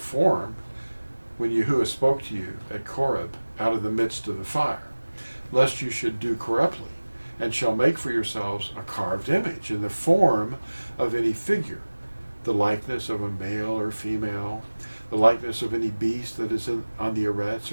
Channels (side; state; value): both; inverted; correlation -1.00